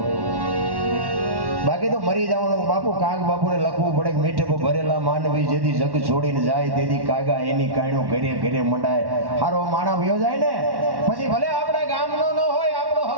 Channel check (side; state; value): left; late; 1.1 ms